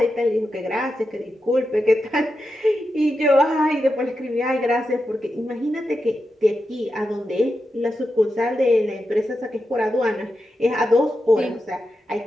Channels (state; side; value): normal; both; correlation 0.88